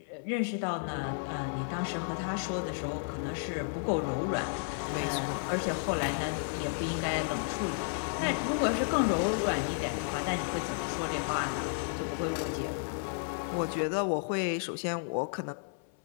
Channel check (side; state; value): right; silent; 56 dB below the other